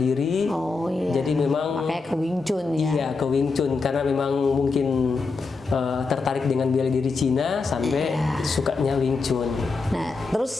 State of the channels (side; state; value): right; quieter; 4.2 dB